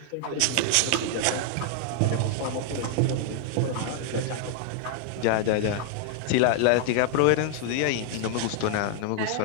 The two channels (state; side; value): different; both; correlation 0.00